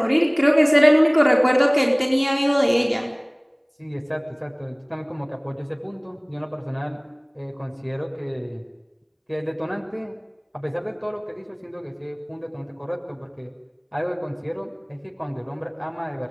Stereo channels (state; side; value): identical; both; correlation 1.00